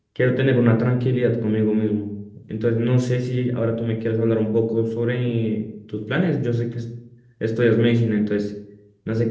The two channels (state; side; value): identical; both; correlation 1.00